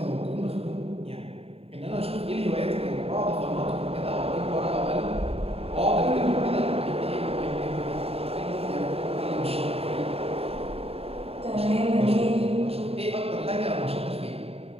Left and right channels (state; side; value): late; left; 0.29 ms